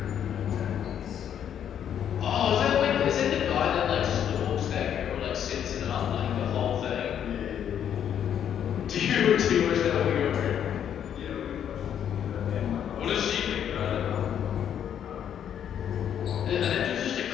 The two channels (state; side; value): quieter; right; 9.3 dB